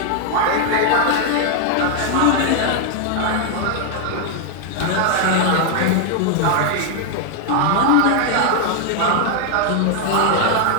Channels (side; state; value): both; different; correlation 0.00